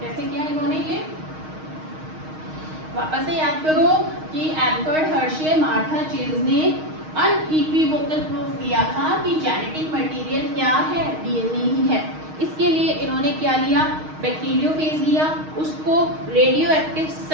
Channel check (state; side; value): late; left; 6.4 ms